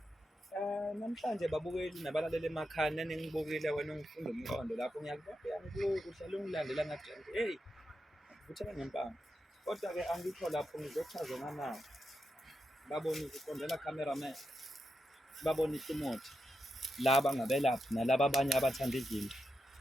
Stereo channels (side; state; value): both; normal; correlation 0.87